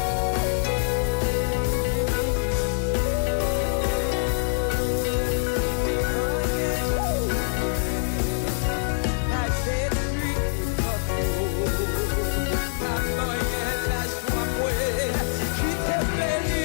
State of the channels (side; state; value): right; silent; 60 dB below the other